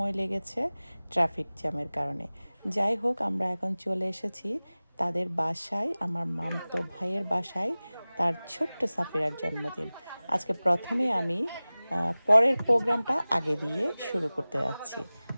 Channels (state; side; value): inverted; both; correlation -0.99